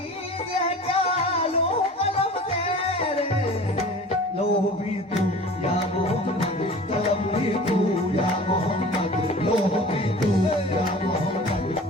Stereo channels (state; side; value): normal; both; correlation 0.41